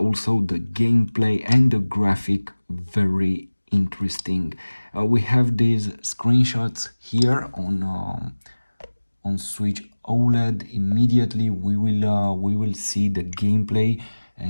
the gameplay and the graphic very interesting. We have these screenshots here on Switch OLED. Immediately we will see the gameplay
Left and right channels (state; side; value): inverted; both; correlation -1.00